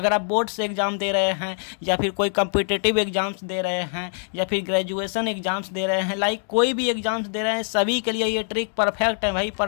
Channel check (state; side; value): silent; right; 57 dB below the other